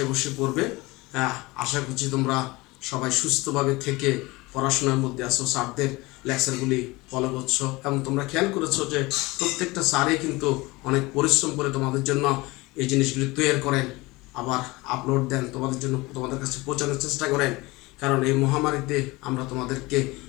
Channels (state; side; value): quieter; right; 22.3 dB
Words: বসে পড়বে। আশা করছি তোমরা সবাই সুস্থভাবে থেকে পড়াশোনার মধ্যে আছো, স্যারদের লেকচারগুলি ফলো করছো, এবং তোমরা খেয়াল করেছো যে প্রত্যেকটা স্যারই কিন্তু অনেক পরিশ্রম করে তোমাদের জন্য এই জিনিসগুলি তৈরি করেন, আবার আপলোড দেন তোমাদের জন্য, তোমাদের কাছে পৌঁছানোর চেষ্টা করেন। কারণ এই মহামারীতে আমরা তোমাদেরকে